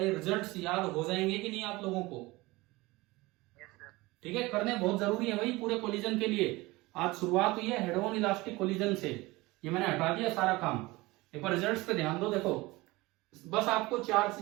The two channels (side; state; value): left; quieter; 21.4 dB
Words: रिजल्ट्स याद हो जाएंगे कि नहीं आप लोगों को? ठीक है, करने बहुत जरूरी है भाई पूरे कोलिजन के लिए। आज शुरुआत हुई है हेड ऑन इलास्टिक कोलिजन से, ये मैंने हटा दिया सारा काम। एक बार रिजल्ट्स पे ध्यान दो, देखो बस आपको चार